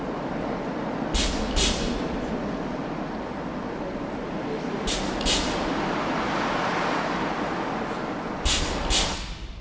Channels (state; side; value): identical; both; correlation 1.00